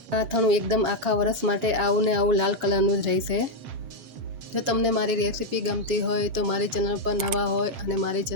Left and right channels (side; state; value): left; late; 7.3 ms